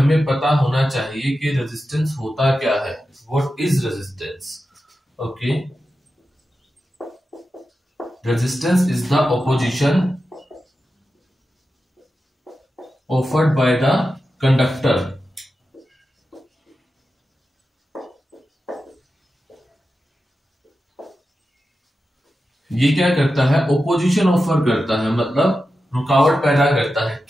पता होना चाहिए कि रेजिस्टेंस होता क्या है। What is resistance? Okay, resistance is the opposition offered by the conductor ये क्या करता है? ओपोजिशन ऑफर करता है, मतलब रुकावट पैदा करता है।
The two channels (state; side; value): normal; both; correlation 0.91